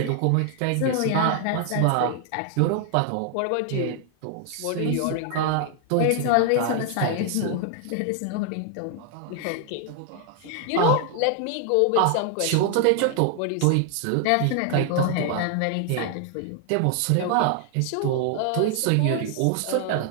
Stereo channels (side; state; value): both; different; correlation 0.00